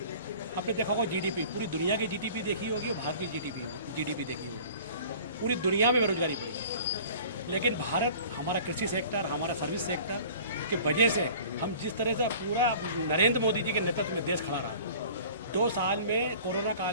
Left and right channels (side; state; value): both; inverted; correlation -0.45